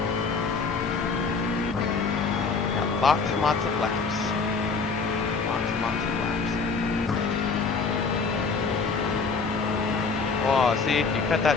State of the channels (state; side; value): quieter; right; 4.7 dB